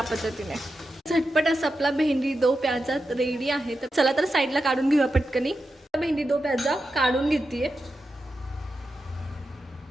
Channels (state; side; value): normal; both; correlation 0.89